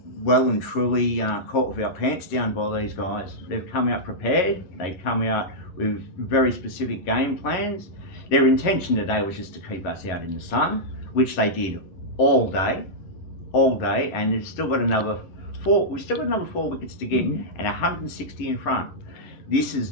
well and truly caught with our pants down by these guys. They've come out prepared. They've come out with very specific game plans. Their intention today was just to keep us out in the sun, which they did all day, and they've still got another 4. We've still got another 4 wickets to get, and 160 in front. This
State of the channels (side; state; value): right; late; 11 ms